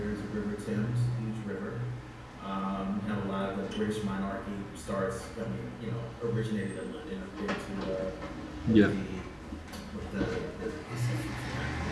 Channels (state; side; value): identical; both; correlation 1.00